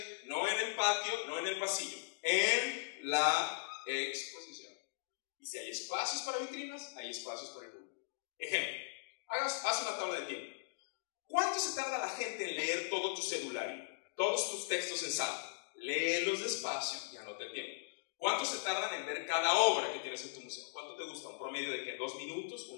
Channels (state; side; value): silent; right; digital silence